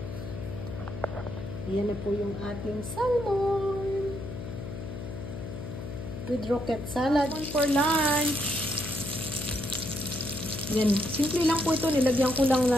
Yan na po yung ating salmon. With rocket salad. For lunch. Yan. Simple lang po ito. Nilagyan ko lang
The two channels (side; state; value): left; noise; hum, 8 dB below the sound